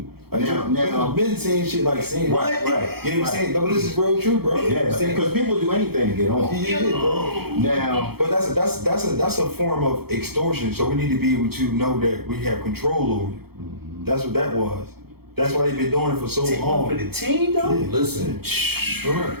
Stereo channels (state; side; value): late; left; 0.96 ms